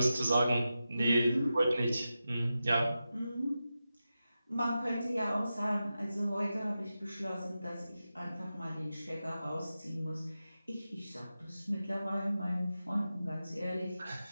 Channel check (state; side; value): inverted; both; correlation -0.92